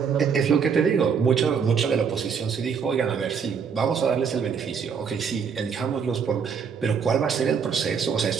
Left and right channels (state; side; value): quieter; left; 6.4 dB